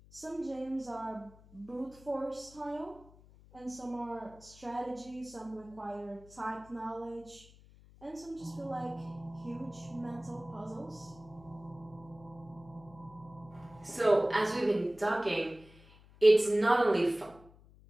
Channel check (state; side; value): noise; left; hum, 23 dB below the sound